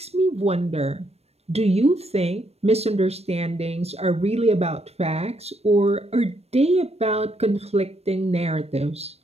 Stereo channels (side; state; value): left; late; 0.30 ms